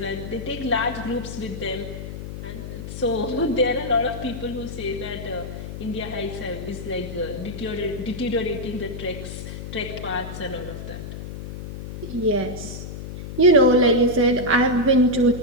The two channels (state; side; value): noise; left; hum, 9 dB below the sound